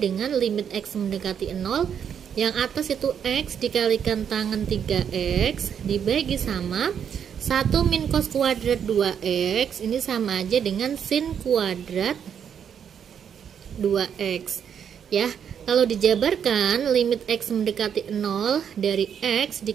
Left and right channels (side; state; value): left; quieter; 8.1 dB